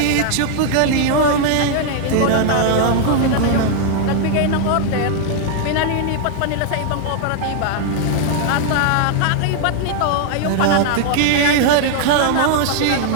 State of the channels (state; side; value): different; both; correlation 0.00